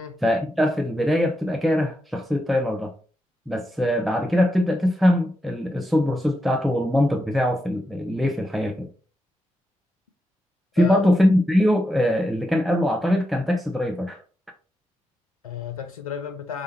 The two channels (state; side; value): normal; both; correlation 0.86